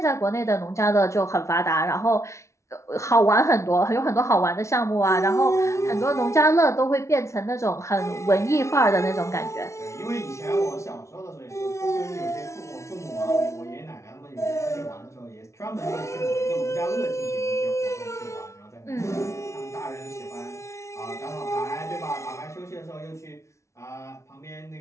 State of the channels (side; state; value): right; late; 0.14 ms